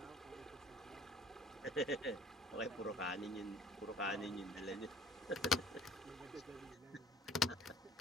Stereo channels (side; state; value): both; normal; correlation 0.50